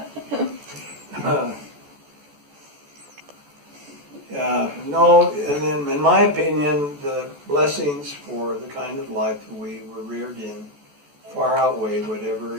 No, and then in my opinion, the blessings for the kind of life that we were reared in far outweigh whatever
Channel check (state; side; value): late; left; 14 ms